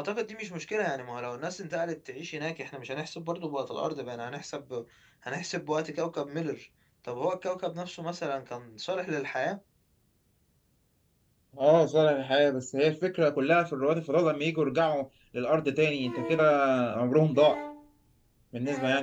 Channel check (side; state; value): both; identical; correlation 1.00